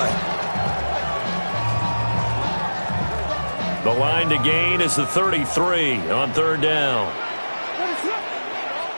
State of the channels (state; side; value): inverted; both; correlation -1.00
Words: The line to gain is the 33 on 3rd down.